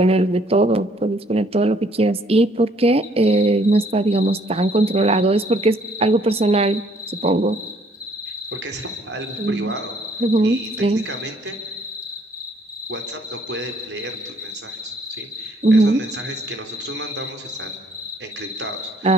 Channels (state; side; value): normal; both; correlation 0.63